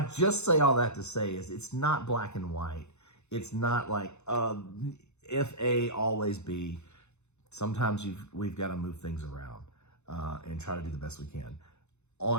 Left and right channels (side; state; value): right; late; 0.82 ms